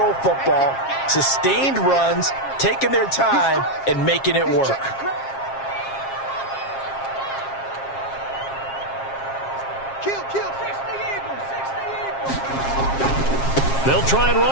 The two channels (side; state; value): right; late; 7.4 ms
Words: football, sustained runs, taking their time, and making it work. They'll try and